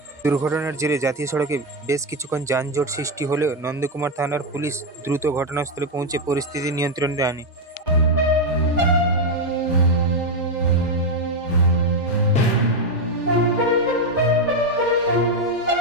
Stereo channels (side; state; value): both; normal; correlation 0.04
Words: দুর্ঘটনার জেরে জাতীয় সড়কে বেশ কিছুক্ষণ যানজট সৃষ্টি হলেও নন্দকুমার থানার পুলিশ দ্রুত ঘটনাস্থলে পৌঁছে পরিস্থিতি নিয়ন্ত্রণে আনে।